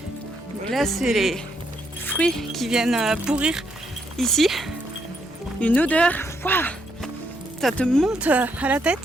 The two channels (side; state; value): both; normal; correlation 0.75